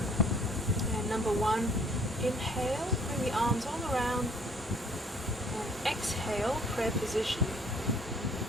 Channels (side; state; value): both; normal; correlation 0.58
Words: And Number 1, inhale, bring the arms all around, and exhale, prayer position.